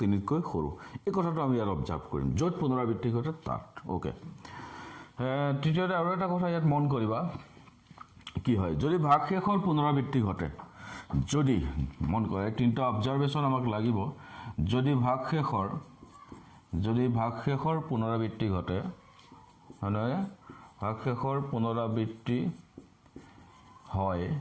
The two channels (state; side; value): identical; both; correlation 1.00